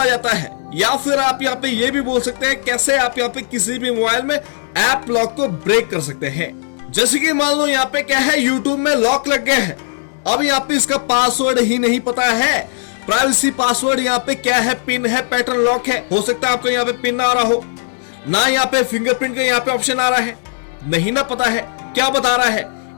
जाता है, या फिर आप यहाँ पे ये भी बोल सकते हैं कैसे आप यहाँ पे किसी भी मोबाइल में ऐप लॉक को ब्रेक कर सकते हैं। जैसे कि मान लो यहाँ पे क्या है, यूट्यूब में लॉक लग गया है, अब यहाँ पे इसका पासवर्ड ही नहीं पता है, प्राइवेसी पासवर्ड यहाँ पे क्या है, पिन है, पैटर्न लॉक है। हो सकता है आपको यहाँ पे पिन ना आ रहा हो, ना यहाँ पे फिंगरप्रिंट का यहाँ पे ऑप्शन आ रहा है, नहीं ना पता है क्या बता रहा है,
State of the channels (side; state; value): right; silent; digital silence